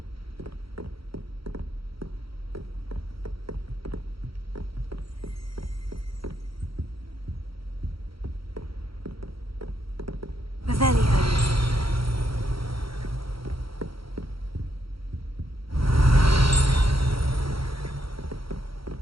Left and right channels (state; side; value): late; left; 0.75 ms